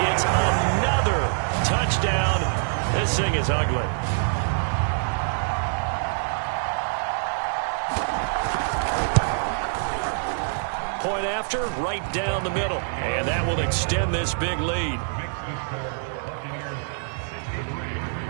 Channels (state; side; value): silent; left; 62 dB below the other